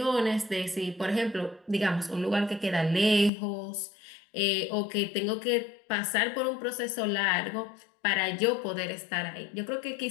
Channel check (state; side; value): drops out; right; at 3.3 s